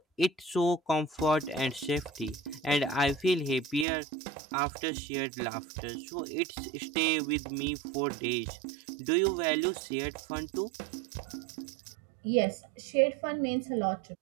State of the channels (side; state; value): left; drops out; at 3.9 s